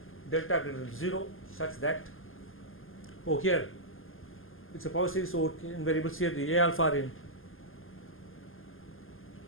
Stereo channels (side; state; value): right; late; 0.59 ms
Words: delta greater than 0 such that, here it's a power series over in variables, here the a alpha are in